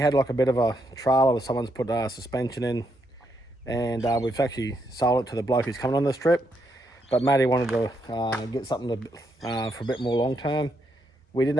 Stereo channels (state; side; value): normal; both; correlation 0.78